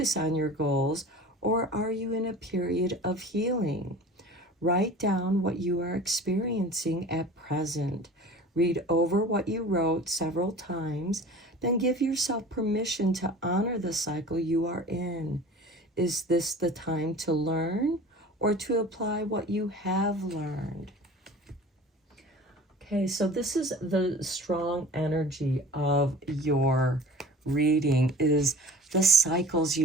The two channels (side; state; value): both; normal; correlation 0.41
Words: on your goals, or are you in a period of healing? Write down what you are experiencing at present. Read over what you wrote several times, then give yourself permission to honor the cycle you are in. Is this the time to learn or to apply what you have learned? Okay, so this is the strong energy of your reading, is the cycles